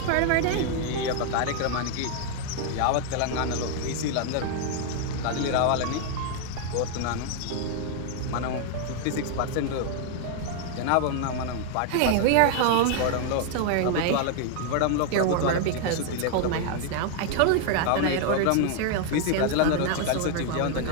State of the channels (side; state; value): both; different; correlation 0.00